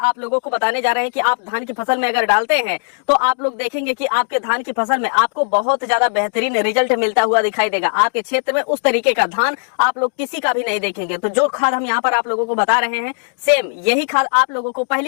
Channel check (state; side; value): silent; right; digital silence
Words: लोगों को बताने जा रहे हैं कि आप धान की फसल में अगर डालते हैं तो आप लोग देखेंगे कि आपके धान की फसल में आपको बहुत ज्यादा बेहतरीन रिजल्ट मिलता हुआ दिखाई देगा। आपके क्षेत्र में उस तरीके का धान आप लोग किसी का भी नहीं देखेंगे। तो जो खाद हम यहाँ पर आप लोगों को बता रहे हैं, सेम यही खाद आप लोगों को